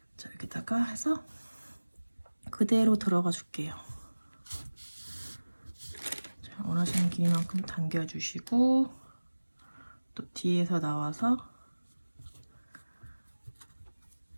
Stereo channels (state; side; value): inverted; both; correlation -1.00